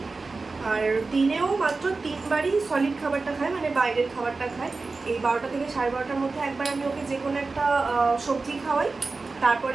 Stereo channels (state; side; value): quieter; left; 3.9 dB